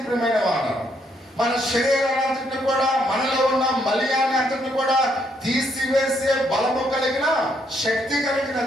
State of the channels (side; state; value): both; normal; correlation 0.73